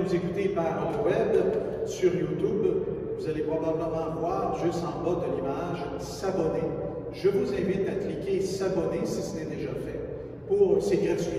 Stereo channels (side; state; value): both; identical; correlation 1.00